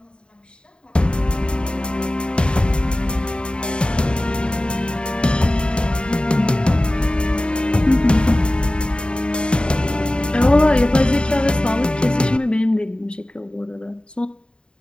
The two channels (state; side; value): late; right; 0.052 ms